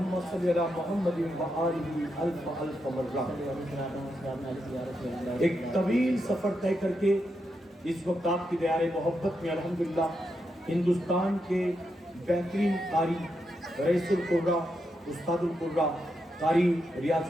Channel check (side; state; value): both; normal; correlation 0.84